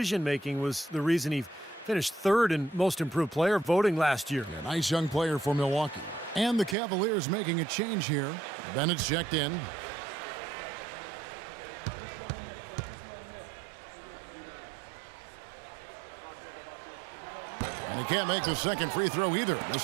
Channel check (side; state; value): left; drops out; at 6.8 s